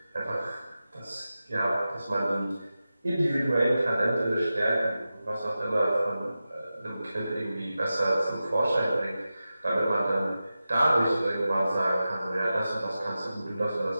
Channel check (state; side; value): inverted; both; correlation -0.93